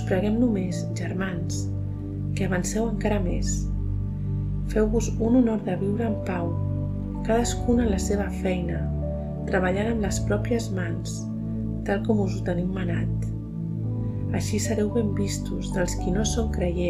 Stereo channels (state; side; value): identical; both; correlation 1.00